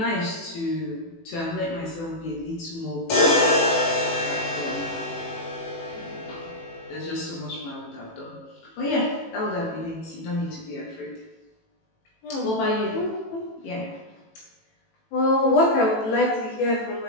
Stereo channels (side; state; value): right; late; 18 ms